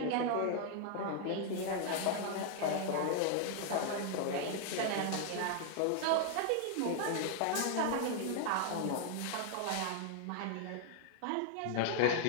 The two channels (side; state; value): both; different; correlation 0.00